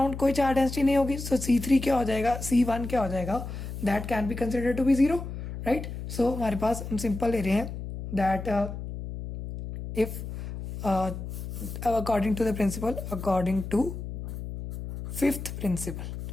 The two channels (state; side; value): noise; left; hum, 8 dB below the sound